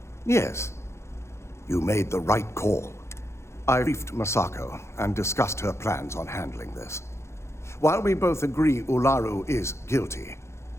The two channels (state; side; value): late; right; 0.13 ms